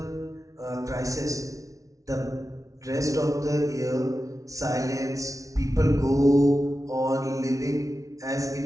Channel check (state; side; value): late; left; 0.16 ms